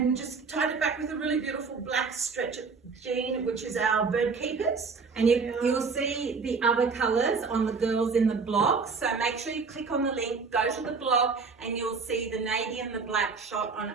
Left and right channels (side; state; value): left; quieter; 4.8 dB